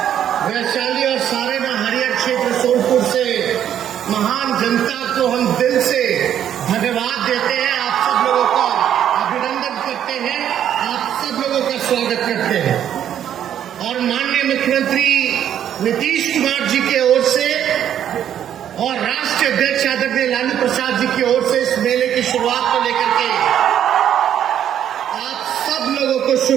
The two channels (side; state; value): left; quieter; 10.1 dB